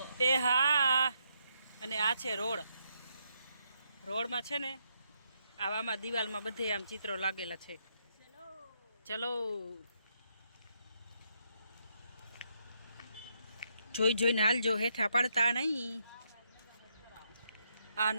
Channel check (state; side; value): inverted; both; correlation -0.77